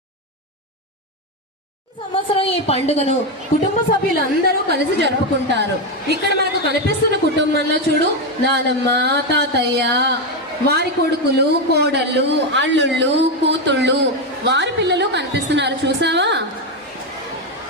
సంవత్సరం ఈ పండుగను కుటుంబ సభ్యులందరూ కలిసి జరుపుకుంటారు. ఇక్కడ మనకు కనిపిస్తున్న కుటుంబంలో చూడు, నానమ్మ, తాతయ్య, వారి కొడుకులు, కోడళ్ళు, అల్లుళ్ళు, కూతుళ్ళు, వారి పిల్లలు కనిపిస్తున్నారు. చూసావా?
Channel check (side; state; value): both; normal; correlation 0.09